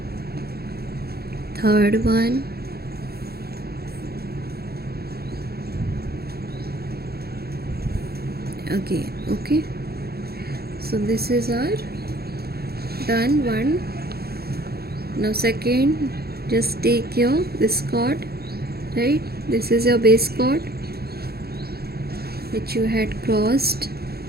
third one, again. Okay, so this is our done one. Now second, just take your this chord, right? This is your base chord which you had crossed.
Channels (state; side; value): late; left; 0.46 ms